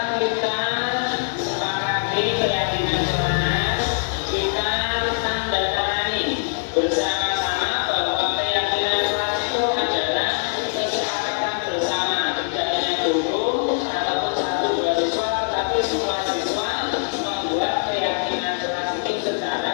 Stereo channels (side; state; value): right; silent; digital silence